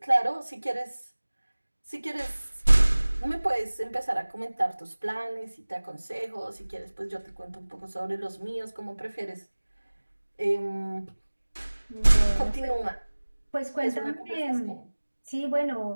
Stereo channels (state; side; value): inverted; both; correlation -1.00